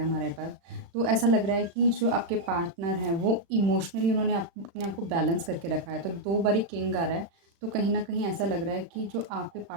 हमारे पास। तो ऐसा लग रहा है कि जो आपके पार्टनर हैं वो इमोशनली उन्होंने अपने आप को बैलेंस करके रखा है। तो 2 बारी किंग आ रहा है, तो कहीं न कहीं ऐसा लग रहा है कि जो आपके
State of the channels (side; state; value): left; late; 35 ms